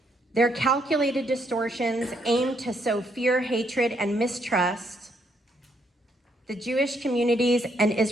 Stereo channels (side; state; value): both; normal; correlation 0.73